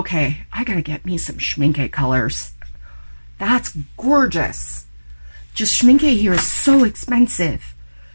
I gotta get me some Schminke colors. That's gorgeous. Just Schminke here is so expensive,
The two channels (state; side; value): inverted; both; correlation -1.00